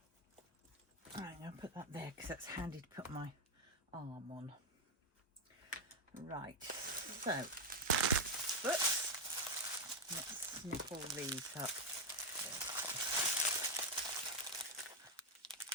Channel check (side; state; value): both; normal; correlation 0.05